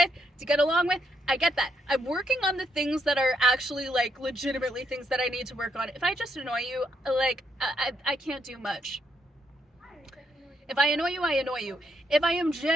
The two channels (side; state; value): both; normal; correlation 0.77